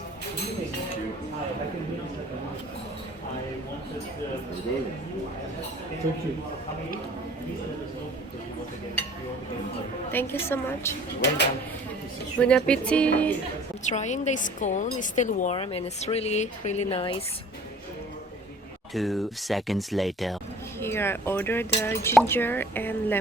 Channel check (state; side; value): normal; both; correlation 0.49